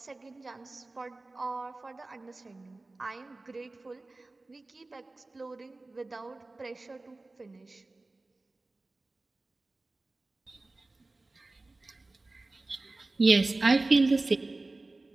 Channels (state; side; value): quieter; left; 3.2 dB